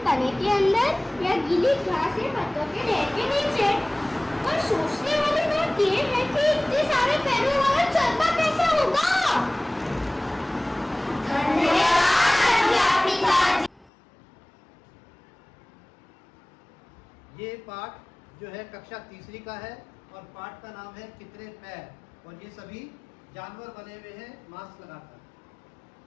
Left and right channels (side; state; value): right; drops out; at 13.9 s